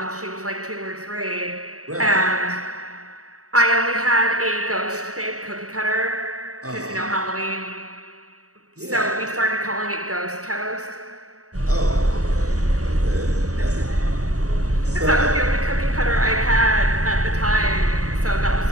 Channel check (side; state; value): left; late; 0.66 ms